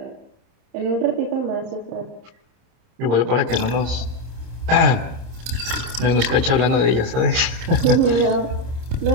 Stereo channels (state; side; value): late; left; 30 ms